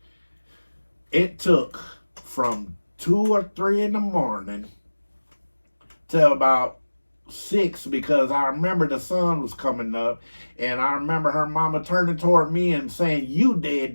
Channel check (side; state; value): both; inverted; correlation -1.00